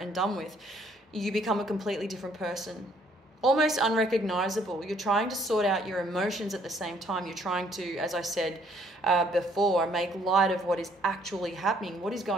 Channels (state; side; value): normal; both; correlation 0.64